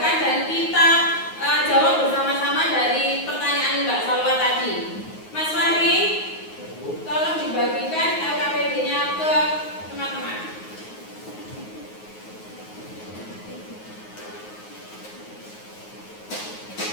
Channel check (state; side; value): late; right; 9.4 ms